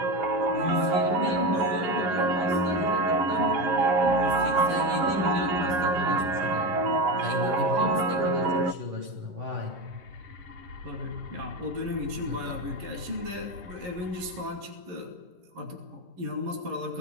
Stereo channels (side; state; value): left; late; 11 ms